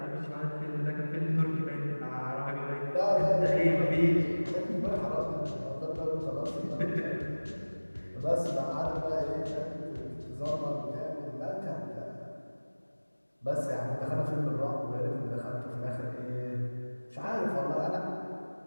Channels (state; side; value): inverted; both; correlation -1.00